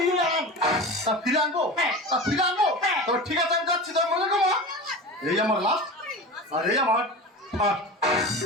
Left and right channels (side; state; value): both; normal; correlation 0.30